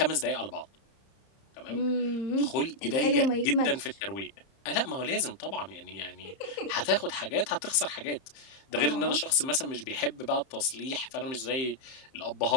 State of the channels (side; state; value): right; late; 30 ms